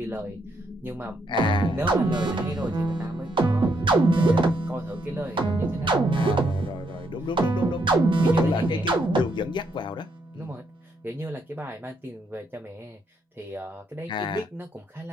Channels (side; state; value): both; normal; correlation 0.75